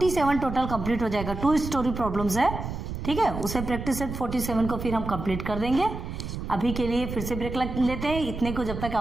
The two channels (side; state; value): right; noise; rumble, 7 dB below the sound